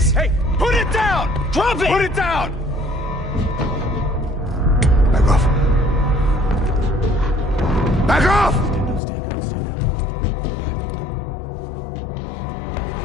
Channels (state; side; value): drops out; right; at 9.0 s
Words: Hey, put it down! Drop it! Put it down! Back off. Back off!